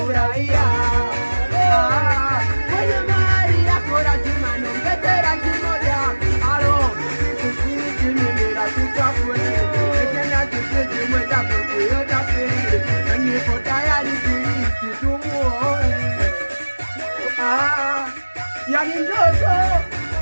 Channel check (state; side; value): inverted; both; correlation -1.00